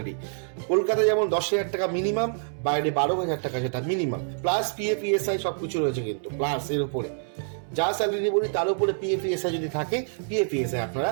কলকাতায় যেমন 10,000 টাকা মিনিমাম, বাইরে 12,000 টাকা যেটা মিনিমাম, প্লাস পিএফ ইএসআই সব কিছু রয়েছে কিন্তু, প্লাস এর উপরে যা স্যালারি বলি তার উপরে পিএফ ইএসআই যদি থাকে, পিএফ ইএসআই আপনারা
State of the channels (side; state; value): left; silent; 61 dB below the other